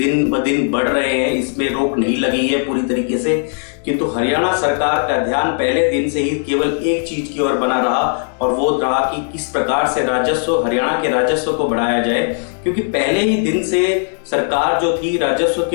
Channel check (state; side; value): silent; right; 60 dB below the other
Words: ब दिन बढ़ रहे हैं, इसमें रोक नहीं लगी है पूरी तरीके से, किंतु हरियाणा सरकार का ध्यान पहले दिन से ही केवल एक चीज की ओर बना रहा और वो रहा कि किस प्रकार से राजस्व, हरियाणा के राजस्व को बढ़ाया जाए। क्योंकि पहले ही दिन से सरकार जो थी राजस्व